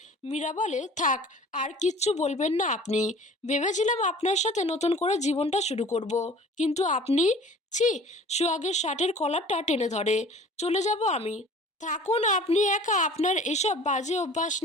মীরা বলে, থাক, আর কিচ্ছু বলবেন না আপনি। ভেবেছিলাম আপনার সাথে নতুন করে জীবনটা শুরু করব, কিন্তু আপনি, ছি। সোহাগের শার্টের কলারটা টেনে ধরে। চলে যাব আমি। থাকুন আপনি একা আপনার এসব বাজে অভ্যাস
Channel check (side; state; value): both; normal; correlation 0.46